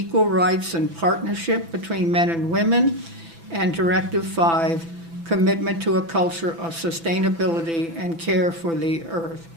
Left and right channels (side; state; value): left; late; 6.0 ms